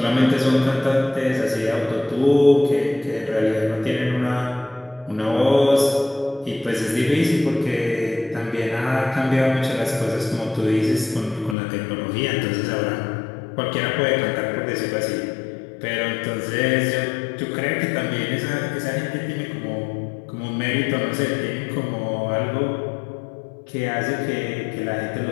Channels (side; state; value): right; drops out; at 11.6 s